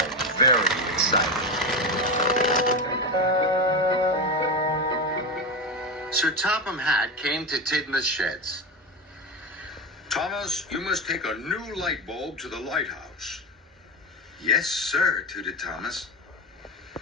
very excited. Sir Topham Hatt came to Tidmouth Sheds. Thomas, you must take a new light bulb to the lighthouse. Yes, sir, tooted Thomas.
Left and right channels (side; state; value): both; normal; correlation 0.17